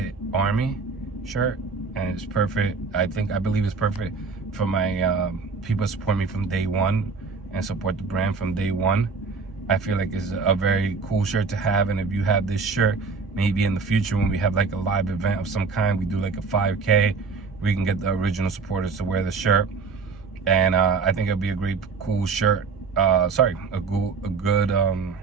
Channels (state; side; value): quieter; left; 4.9 dB